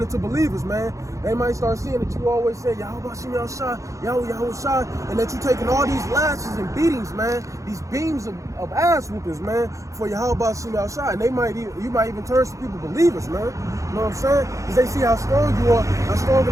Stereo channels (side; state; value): left; late; 0.15 ms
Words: into believers, man. They might start seeing that you always say, Yahweh Shai, Yahweh Shai, and that you're taking all these lashes and beatings, man, these beams of ass whoopings, man, for Yahweh Shai. And you might even turn some people believers, man. You know what I'm saying? Because they see how strong you are, how strong in